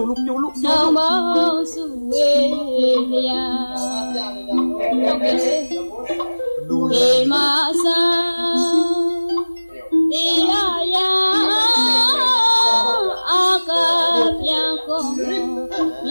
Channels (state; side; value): inverted; both; correlation -1.00